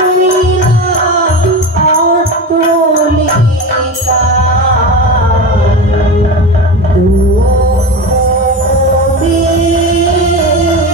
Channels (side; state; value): both; normal; correlation 0.24